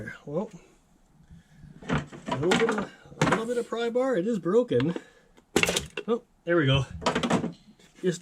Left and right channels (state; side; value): identical; both; correlation 1.00